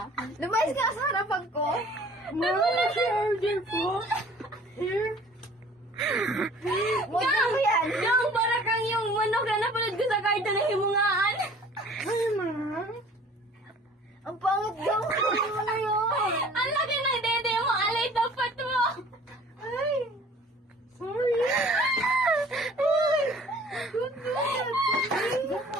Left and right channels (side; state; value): both; normal; correlation 0.50